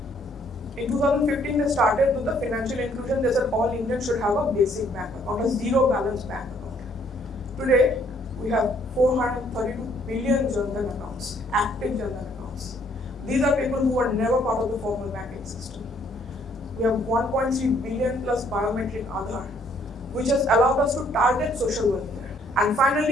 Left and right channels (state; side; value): normal; both; correlation 0.65